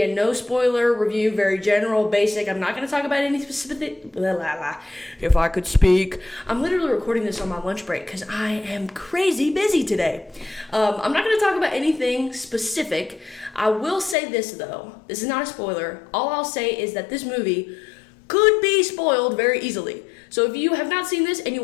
a no spoiler review, very general, basic. I'm not going to talk about any specific, if I could speak. I'm literally recording this on my lunch break because I am crazy busy today. I'm not going to talk about anything specific. I will say this though, this is not a spoiler. All I'll say is that this movie could be spoiled very easily. So if you have not seen this and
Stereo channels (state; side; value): drops out; right; at 14.2 s